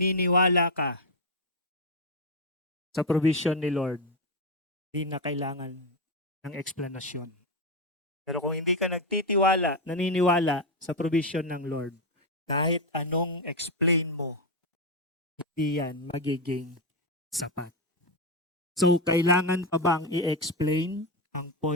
ka sa provision ni Lord, hindi na kailangan ng explanation. Pero kung hindi ka nagtitiwala, naniniwala sa provision ng Lord, kahit anong explain mo, hindi yan magiging sapat. So, kailangan pa bang i-explain ang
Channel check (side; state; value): both; normal; correlation 0.08